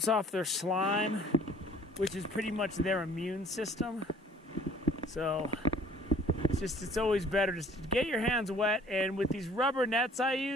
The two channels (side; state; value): both; normal; correlation 0.55